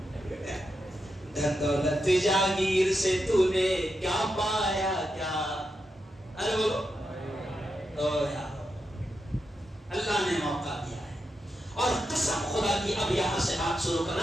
دھن دولت جاگیر سے تو نے کیا پایا کیا، ارے بولو تو یار اللہ نے موقع دیا ہے، اور قسم خدا کی اب یہاں سے بات شروع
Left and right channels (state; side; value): normal; both; correlation 0.86